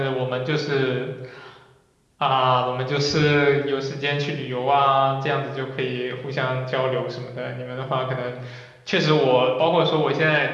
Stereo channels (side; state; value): both; identical; correlation 1.00